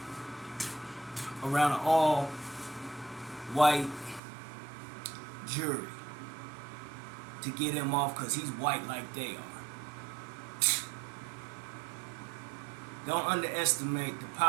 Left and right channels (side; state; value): left; drops out; at 4.2 s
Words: around an all white jury to get him off because he's white like they are. Don't underestimate the